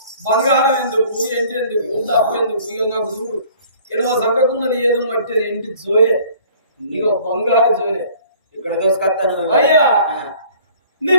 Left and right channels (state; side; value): inverted; both; correlation -0.53